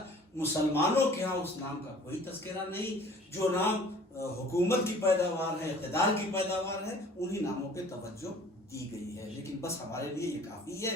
مسلمانوں کے ہاں اس نام کا کوئی تذکرہ نہیں۔ جو نام حکومت کی پیداوار ہے، اقتدار کی پیداوار ہے، انہی ناموں پہ توجہ دی گئی ہے۔ لیکن بس ہمارے لیے یہ کافی ہے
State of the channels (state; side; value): normal; both; correlation 0.50